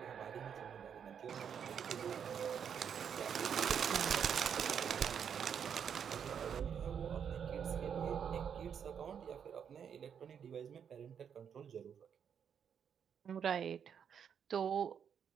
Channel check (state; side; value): quieter; left; 7.7 dB